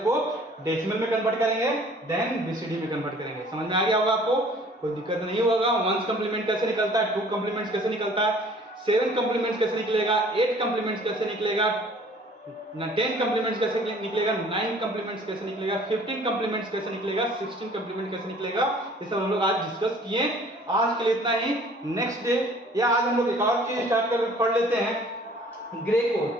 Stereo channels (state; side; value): normal; both; correlation 0.53